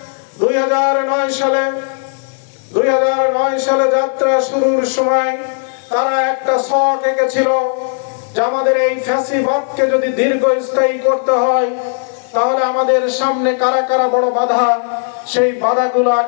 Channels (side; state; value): right; silent; 60 dB below the other